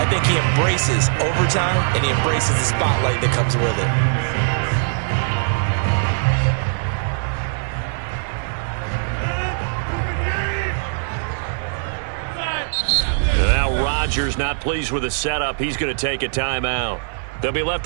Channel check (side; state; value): left; silent; 57 dB below the other